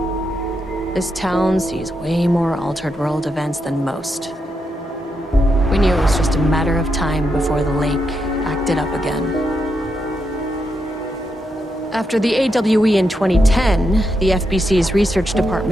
this town sees way more altered world events than most. We knew it was just a matter of time before the lake acted up again. After the AWE in 2010, the FBC's research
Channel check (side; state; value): both; normal; correlation 0.83